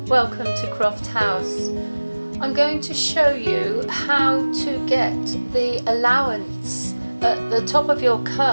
welcome to Croft House. I'm going to show you how to get the allowance at the top of your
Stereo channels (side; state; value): both; inverted; correlation -1.00